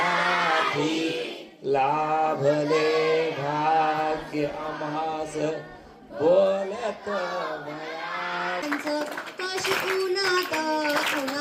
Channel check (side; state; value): both; identical; correlation 1.00